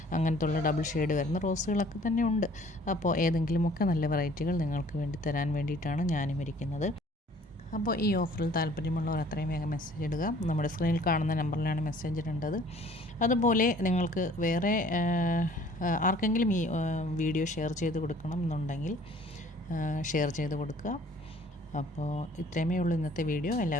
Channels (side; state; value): both; normal; correlation 0.54